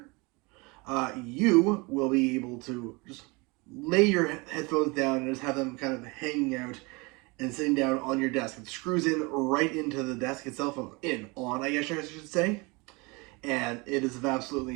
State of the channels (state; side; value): quieter; left; 26.8 dB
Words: you will be able to just lay your headphones down and just have them kind of hanging out and sitting down on your desk. It screws in right into the desk itself, I guess I should say. And it is of